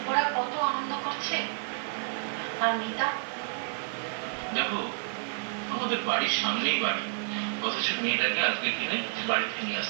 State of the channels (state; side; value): silent; left; digital silence